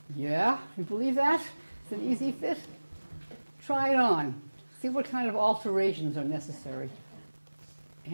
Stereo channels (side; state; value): both; inverted; correlation -1.00